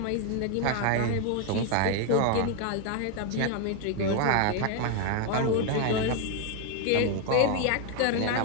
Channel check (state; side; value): different; both; correlation 0.01